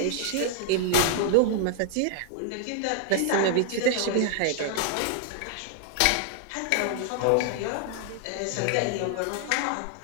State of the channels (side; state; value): both; different; correlation 0.00